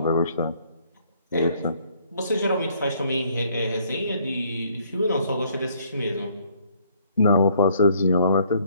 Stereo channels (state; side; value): inverted; both; correlation -0.64